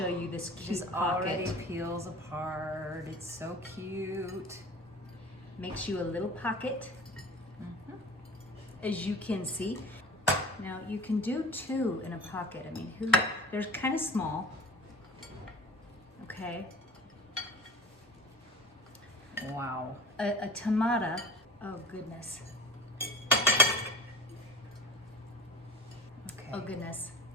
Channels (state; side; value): normal; both; correlation 0.39